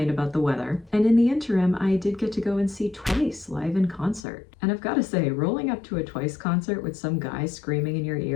about the weather. And in the interim, I did get to go and see Twice live in concert. And I've got to say, rolling up to a Twice concert with some guy screaming in your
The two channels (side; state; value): right; drops out; at 4.2 s